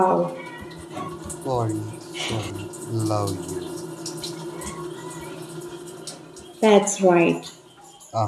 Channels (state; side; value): identical; both; correlation 1.00